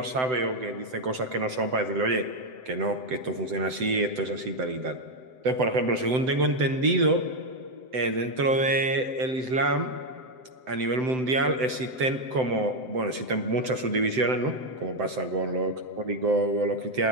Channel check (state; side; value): late; left; 7.8 ms